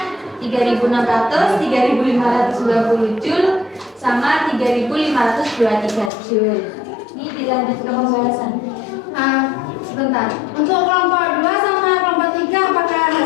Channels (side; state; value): right; drops out; at 6.1 s